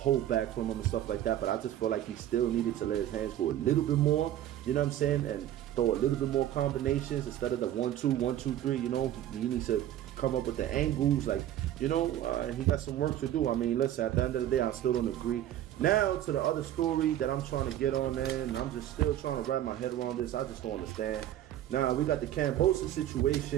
back from him and stuff like that, but I just feel like he still needed to let his hands go a little bit more, you know what I'm saying, and throw a little bit more combinations instead of the 1-2, 1-2-3, he needs to come up with the angles, like, he got some work to do. I mean, listen, at the end of the day, I still don't agree. Now to the other story that I'm trying to get on, man, I'm just still trying to wrap my head around this. I just don't understand. Now, we got the Kambosos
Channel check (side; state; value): left; quieter; 12.1 dB